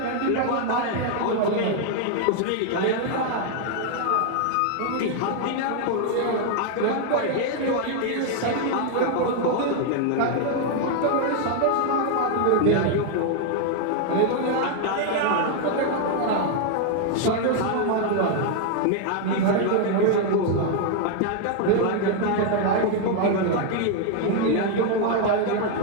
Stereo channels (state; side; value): different; both; correlation 0.00